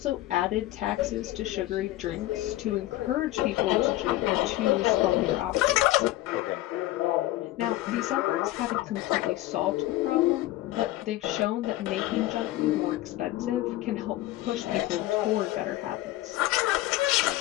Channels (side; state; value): right; quieter; 16.2 dB